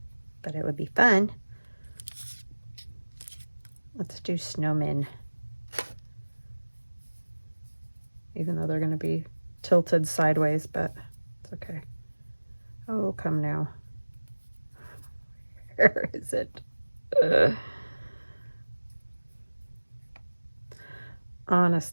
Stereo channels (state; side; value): inverted; both; correlation -1.00